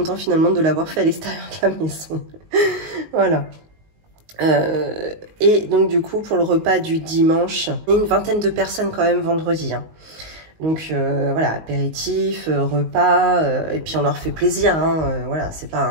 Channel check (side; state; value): left; late; 19 ms